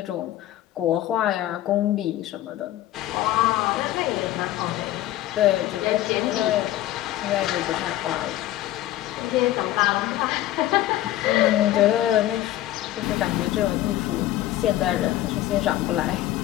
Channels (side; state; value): right; quieter; 14.3 dB